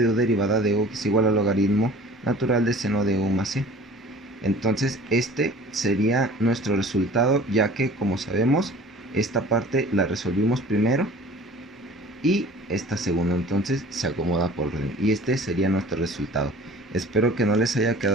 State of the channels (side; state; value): both; normal; correlation 0.46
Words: u derivada de u es igual al logaritmo natural de seno de u más c. Entonces, este sería nuestro resultado, ya que, como sabemos, esta parte la resolvimos primero y esta segunda, entonces se acomoda por orden, y este sería nuestro resultado. Espero que no les haya